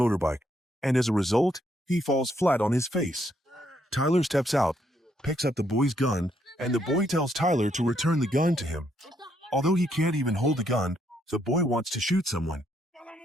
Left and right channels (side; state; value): both; normal; correlation 0.74